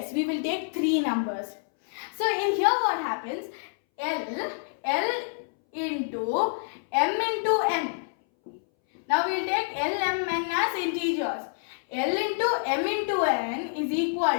we will take 3 numbers. So in here what happens? L into m into n. Now we will take L, m, n as integers. L into m into n is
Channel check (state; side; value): silent; right; 60 dB below the other